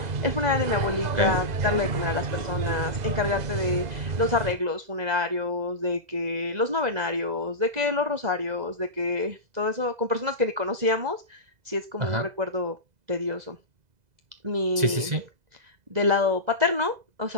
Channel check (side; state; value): left; late; 2.0 ms